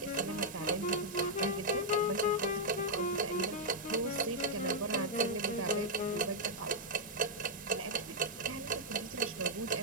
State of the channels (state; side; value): normal; both; correlation -0.04